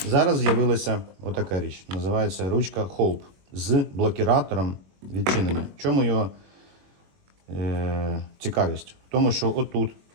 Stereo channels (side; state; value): left; late; 21 ms